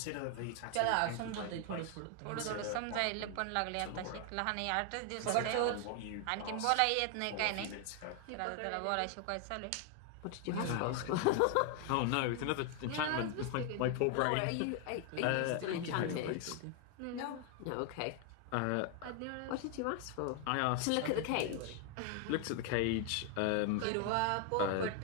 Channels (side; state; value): both; different; correlation 0.01